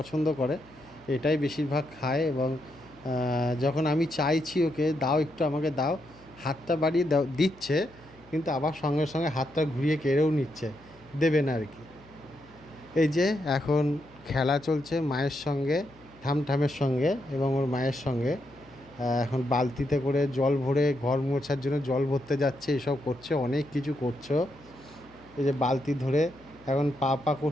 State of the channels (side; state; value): left; noise; hum, 26 dB below the sound